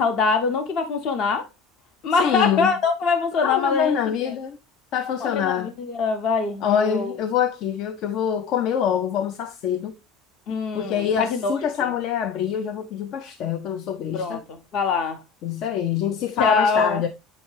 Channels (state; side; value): quieter; right; 6.0 dB